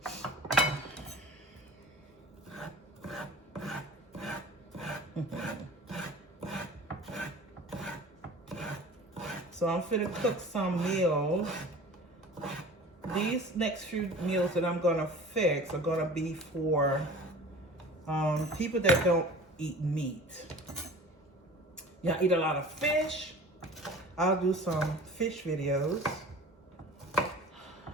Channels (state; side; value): normal; both; correlation 0.41